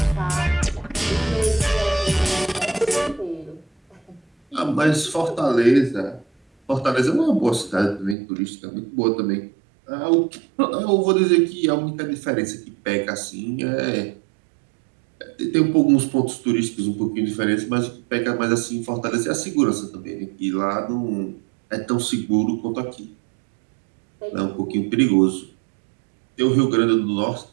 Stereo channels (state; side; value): drops out; left; at 8.2 s